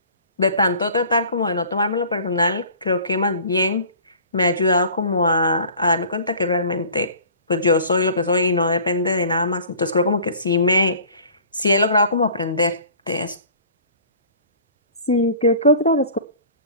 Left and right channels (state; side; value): inverted; both; correlation -0.46